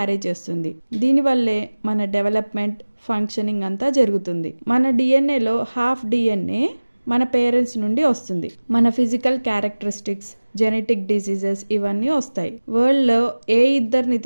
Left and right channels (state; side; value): inverted; both; correlation -1.00